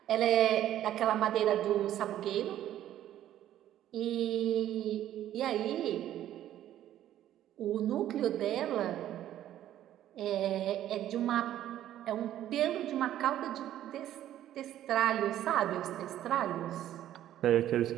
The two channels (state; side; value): quieter; left; 12.2 dB